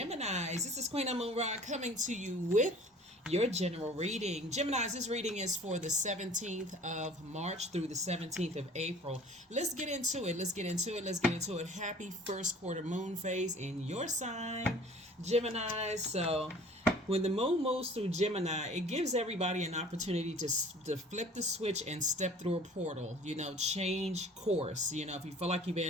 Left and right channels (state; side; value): normal; both; correlation 0.48